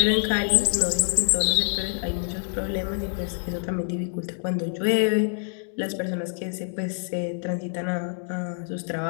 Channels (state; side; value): silent; right; digital silence